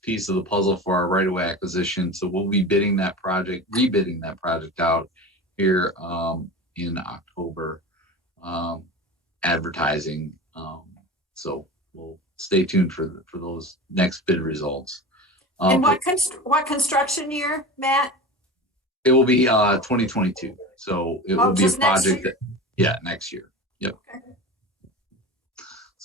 piece of the puzzle for our right-of-way acquisition. So we'll be rebidding that project out here in October, advertising. So we'll stay tuned for those next bid results. And what construction year, Matt? It will be 2022. So it will be a project next year. Yep. Okay.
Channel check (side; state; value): both; normal; correlation 0.30